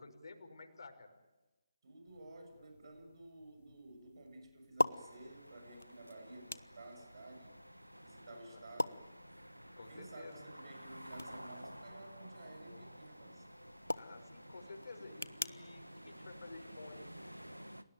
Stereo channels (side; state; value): both; inverted; correlation -0.95